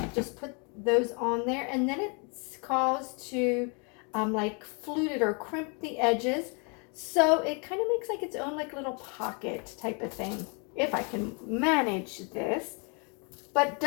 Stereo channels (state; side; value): quieter; right; 35.3 dB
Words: Just put those on there. And then it's caused to like flute it or crimp the edges. So it kind of makes like its own like little pocket type of thing, if I can manage this. But